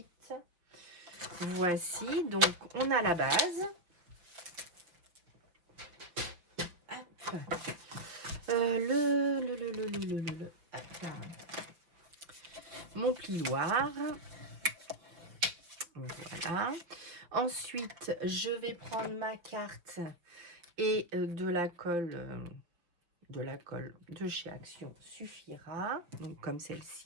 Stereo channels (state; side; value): late; left; 5.8 ms